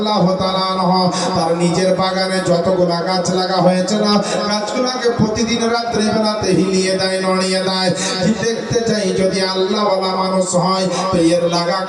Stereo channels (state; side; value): identical; both; correlation 1.00